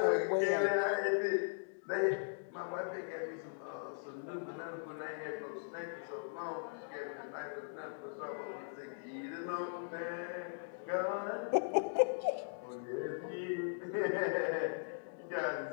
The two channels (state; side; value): silent; right; digital silence